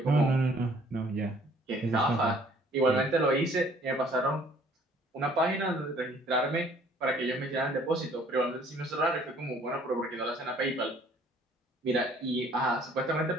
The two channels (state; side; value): normal; both; correlation 0.58